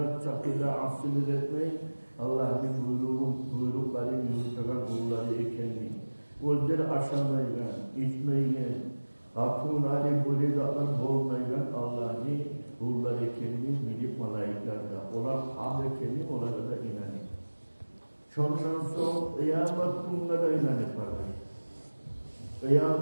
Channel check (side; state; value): both; inverted; correlation -1.00